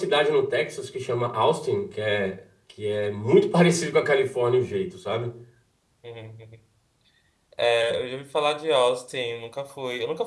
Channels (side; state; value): both; identical; correlation 1.00